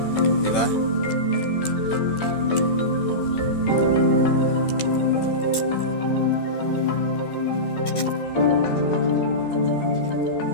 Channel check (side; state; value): right; late; 13 ms